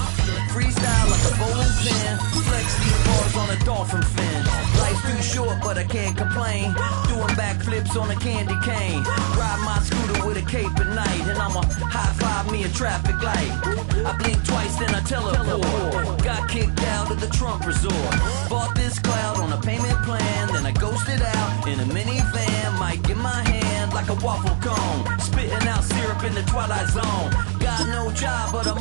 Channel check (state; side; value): silent; left; 65 dB below the other